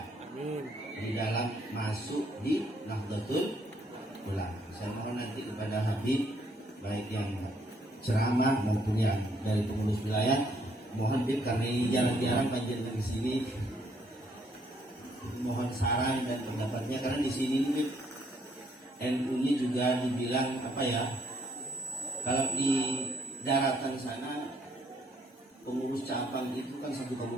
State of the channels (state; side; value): normal; both; correlation 0.68